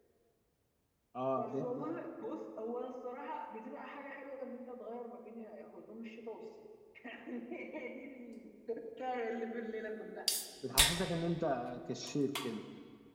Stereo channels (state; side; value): identical; both; correlation 1.00